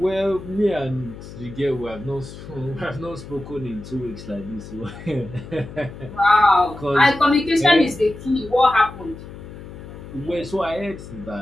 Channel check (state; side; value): noise; left; hum, 14 dB below the sound